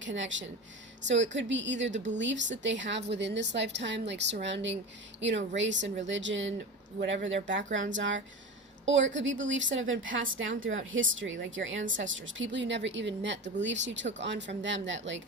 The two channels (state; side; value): normal; both; correlation 0.28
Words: So it could be either the beliefs that they have within this lifetime, like surrounding, you know, race and religion, whatever their backgrounds are. Or it could be beliefs that have been passed down throughout history, like your ancestors, people you never even met, the beliefs you took on from them, that like